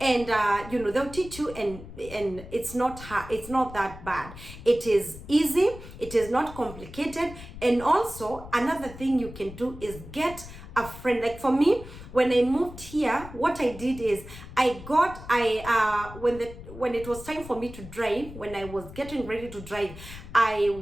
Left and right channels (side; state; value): left; noise; rumble, 14 dB below the sound